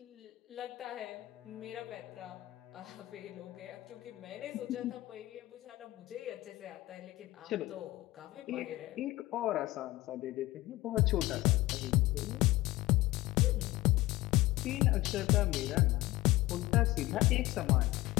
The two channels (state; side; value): quieter; right; 18.0 dB